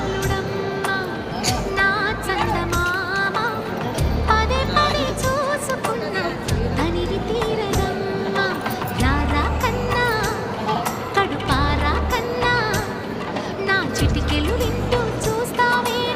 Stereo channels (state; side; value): identical; both; correlation 1.00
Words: నా చందమామ పదే పదే చూసుకున్నా తనివి తీరదమ్మ రారా కన్నా కడుపారా కన్నా నా చిటికెలు వింటూ చూస్తావే